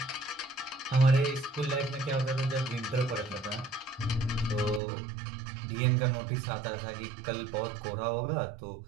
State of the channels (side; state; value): left; drops out; at 4.8 s